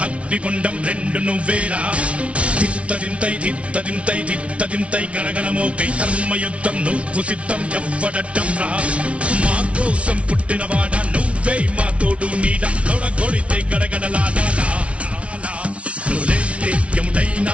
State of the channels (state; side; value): late; left; 0.062 ms